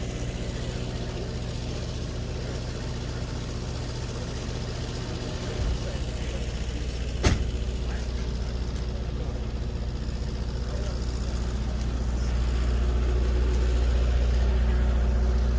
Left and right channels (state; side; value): identical; both; correlation 1.00